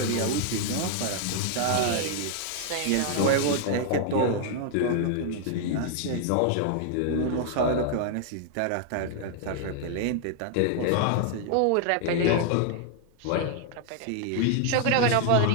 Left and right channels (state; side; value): different; both; correlation 0.00